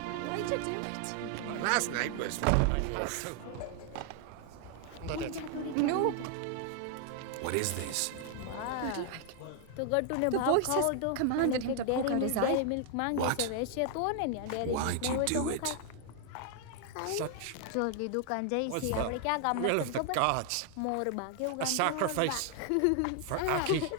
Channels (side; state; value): both; different; correlation 0.00